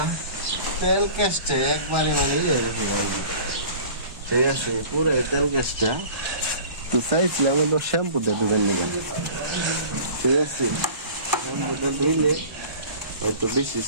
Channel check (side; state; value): left; late; 1.2 ms